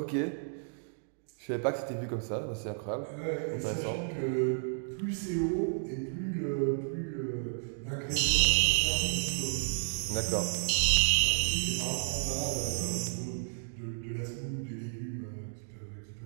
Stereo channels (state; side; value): silent; left; digital silence